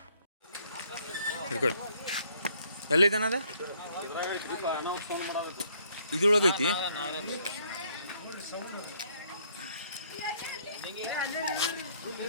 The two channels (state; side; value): inverted; both; correlation -0.66